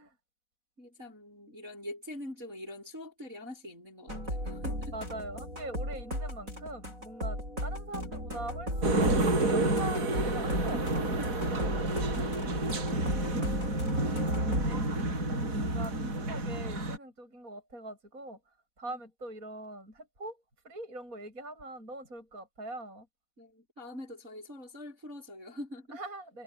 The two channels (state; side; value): late; left; 4.1 ms